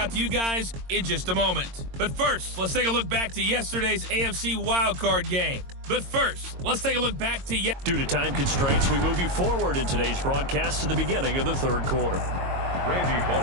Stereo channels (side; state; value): left; late; 22 ms